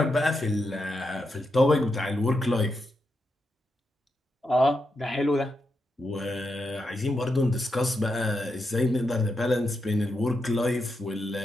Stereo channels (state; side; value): normal; both; correlation 0.85